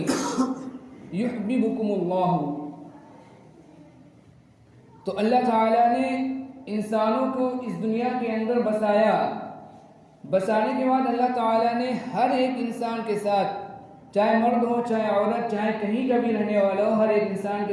یحببکم اللہ، تو اللہ تعالیٰ نے انسانوں کو اس دنیا کے اندر بسایا، بسانے کے بعد اللہ تعالیٰ نے ہر ایک انسان کے ساتھ، چاہے مرد ہو چاہے عورت، چاہے کہیں کا بھی رہنے والا ہو، ہر ایک انسان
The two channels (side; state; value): both; identical; correlation 1.00